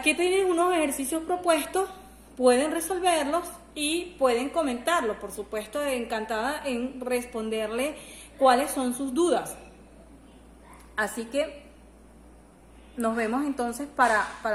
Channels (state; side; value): identical; both; correlation 1.00